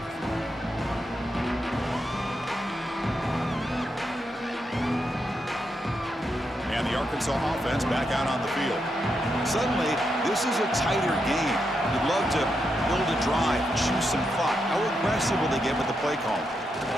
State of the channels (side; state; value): both; normal; correlation 0.83